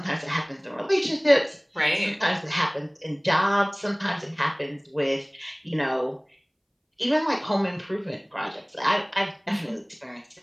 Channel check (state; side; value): identical; both; correlation 1.00